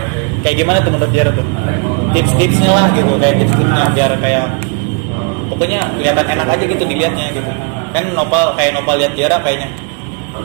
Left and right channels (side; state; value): left; quieter; 35.3 dB